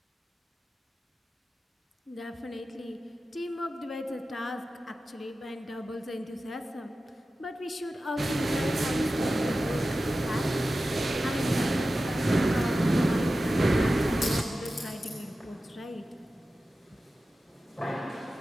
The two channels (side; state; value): both; normal; correlation 0.94